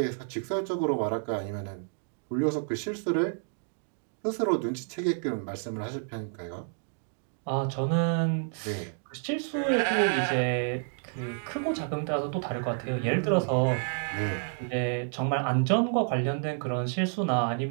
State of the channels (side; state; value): left; silent; 58 dB below the other